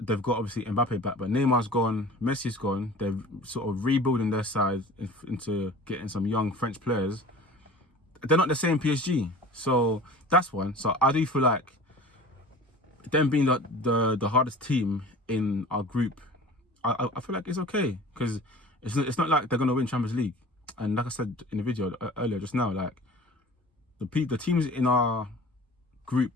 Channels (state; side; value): normal; both; correlation 0.41